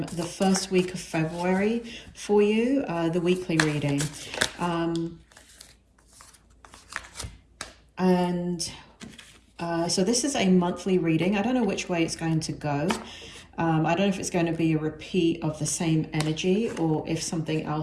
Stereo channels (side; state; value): both; identical; correlation 1.00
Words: first week of February for you, the weekly reading. So this is a monthly reading. I don't know which way it's going to go. I don't know if it's going to be a repeat of the same energy or if something